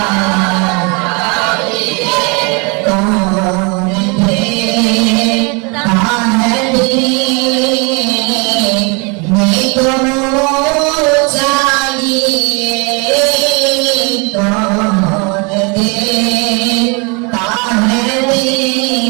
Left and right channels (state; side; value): quieter; left; 31.3 dB